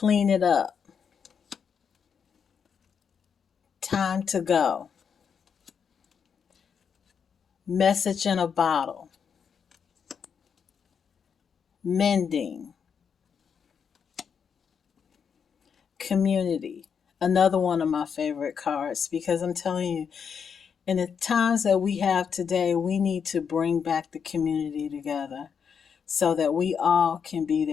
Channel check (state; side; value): quieter; right; 6.8 dB